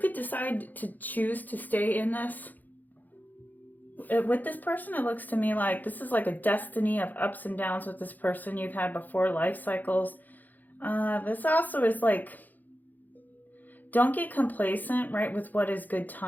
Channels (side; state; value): right; late; 0.084 ms